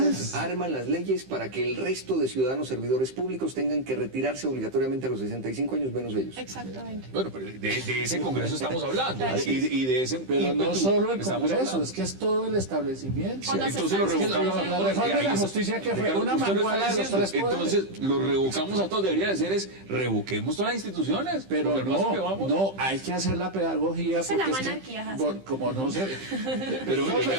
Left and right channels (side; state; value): left; late; 15 ms